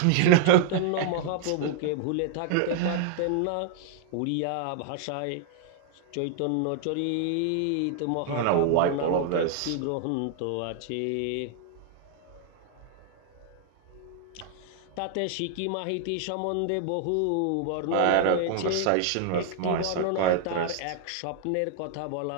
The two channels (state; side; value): different; both; correlation 0.00